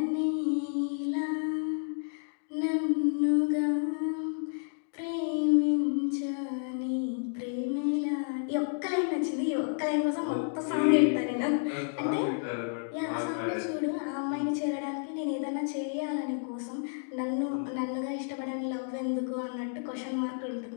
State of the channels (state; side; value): silent; right; digital silence